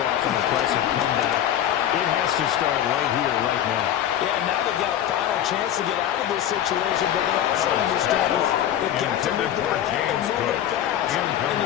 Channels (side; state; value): right; quieter; 10.9 dB